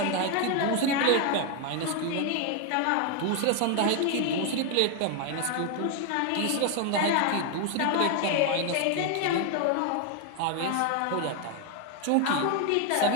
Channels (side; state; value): both; different; correlation 0.01